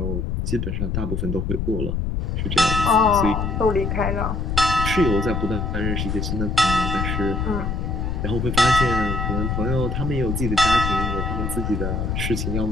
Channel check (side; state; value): left; noise; rumble, 1 dB below the sound